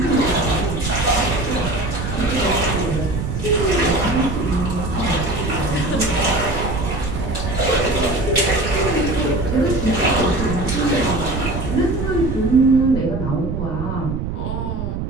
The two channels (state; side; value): noise; right; rumble, 4 dB below the sound